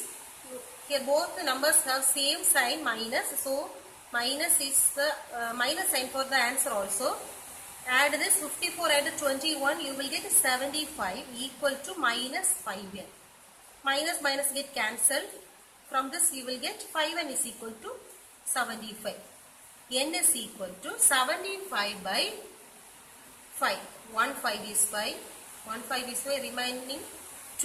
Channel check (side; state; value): both; identical; correlation 1.00